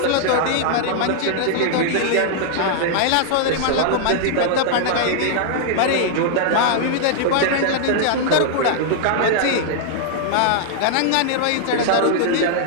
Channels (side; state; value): both; different; correlation -0.01